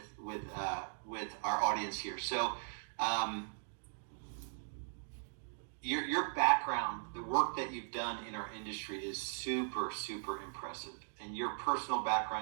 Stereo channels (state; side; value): silent; left; digital silence